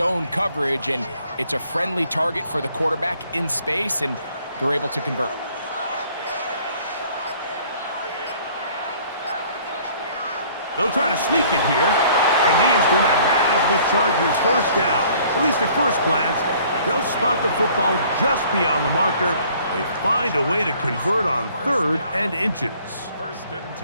coverage. And it's a friendly target for the quarterback in space, and they're able to convert. They'll try to sneak it here, and he is going to have the Chargers first down. At least at first glance, they'll spot the football just beyond the marker. They find a way to convert on 3rd and inches.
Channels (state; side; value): inverted; both; correlation -0.56